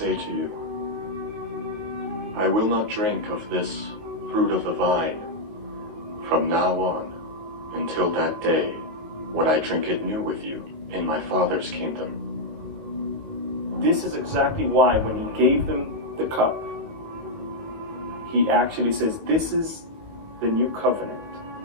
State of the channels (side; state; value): left; late; 18 ms